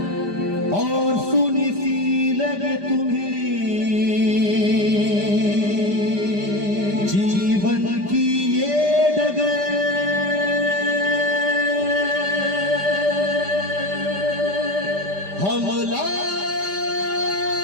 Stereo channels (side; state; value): left; late; 5.0 ms